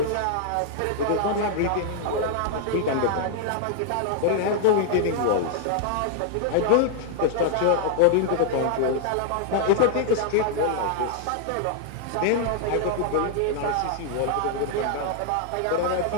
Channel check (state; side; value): different; both; correlation 0.00